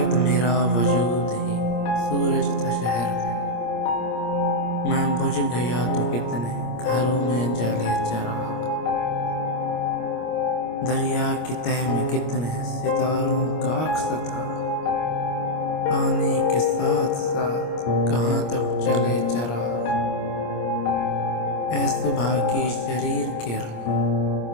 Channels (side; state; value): right; late; 25 ms